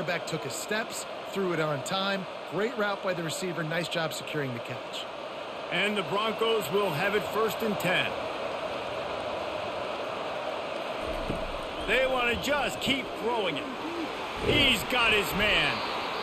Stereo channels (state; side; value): identical; both; correlation 1.00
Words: took his steps, threw it on time. Great route by the receiver. Nice job securing the catch. And the Broncos will have it 1st and 10. They want to just keep throwing it. He's got his man.